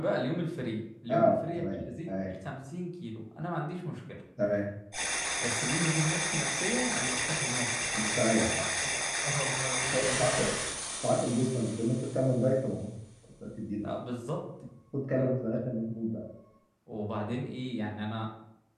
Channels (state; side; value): identical; both; correlation 1.00